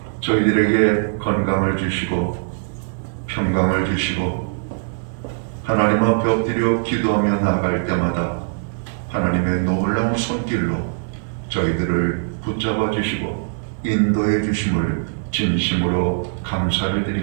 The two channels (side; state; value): left; silent; 65 dB below the other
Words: 저희들에게 건강을 주시고 평강을 주시고 하나님 앞에 엎드려 기도하며 나아갈 때마다 하나님의 놀라운 손길로 저희들을 붙잡아 주시고 인도해 주심을 진심으로 감사를